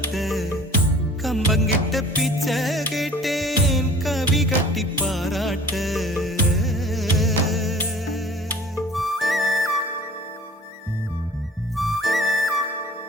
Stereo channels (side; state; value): both; normal; correlation 0.48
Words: கம்பங்கிட்ட பிச்சை கேட்டேன் கவி கட்டி பாராட்ட